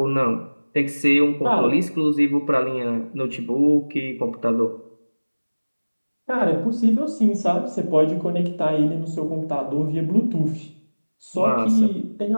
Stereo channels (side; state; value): both; inverted; correlation -1.00